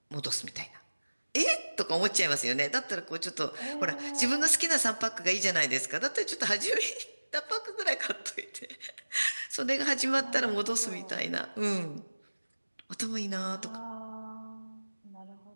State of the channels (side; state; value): both; inverted; correlation -1.00